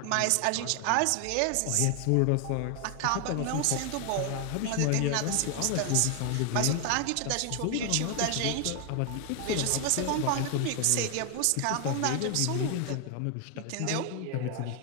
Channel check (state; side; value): different; both; correlation 0.00